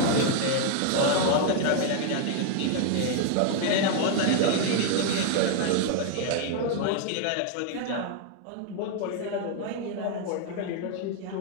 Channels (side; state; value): both; different; correlation 0.00